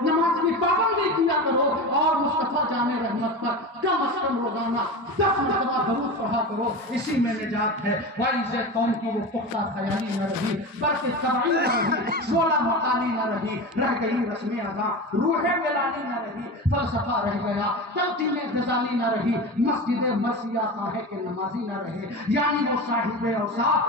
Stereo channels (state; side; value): normal; both; correlation 0.26